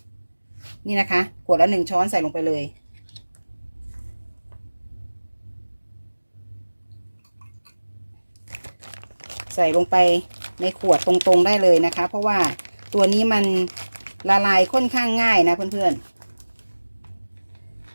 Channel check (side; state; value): both; inverted; correlation -1.00